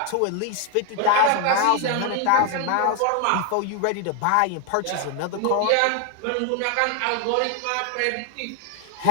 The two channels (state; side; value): different; both; correlation 0.01